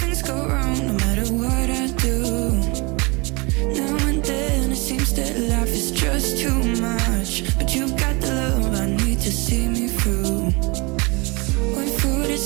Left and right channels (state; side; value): quieter; left; 27.9 dB